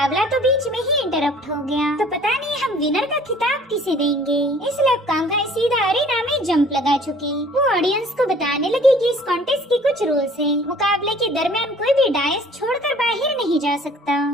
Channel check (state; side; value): normal; both; correlation 0.52